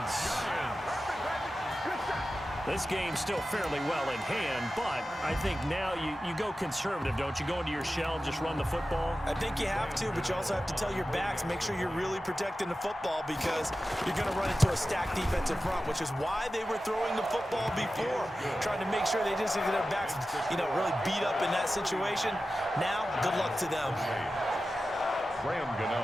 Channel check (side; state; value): both; normal; correlation 0.94